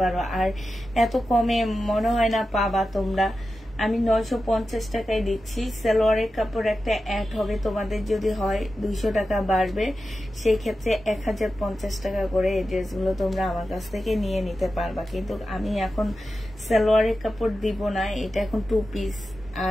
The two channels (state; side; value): normal; both; correlation 0.92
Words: আর এত কমে মনে হয় না পাবা তোমরা। আমি 950 টাকায় দিচ্ছি। সালোয়ারের কাপড় একটা অ্যাড হবে, তোমাদের যদি হয় 200 টাকা বাড়বে, সেই ক্ষেত্রে 1050 টাকা করে এই ড্রেসগুলো তোমরা আমার কাছ থেকে নিয়ে নিতে পারবা। কিন্তু আমি এখন সালোয়ারের কাপড় দিব না, এটা এখন 2 পিস।